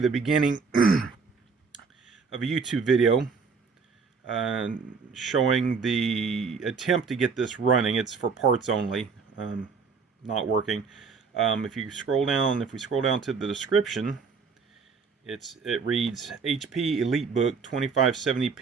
beginning of a YouTube video showing the attempt to get this running. It's for parts only, not working. If we scroll down to the description, it reads HP EliteBook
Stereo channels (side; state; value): left; quieter; 5.2 dB